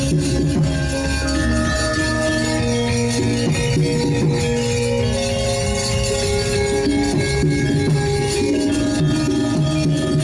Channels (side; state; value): both; identical; correlation 1.00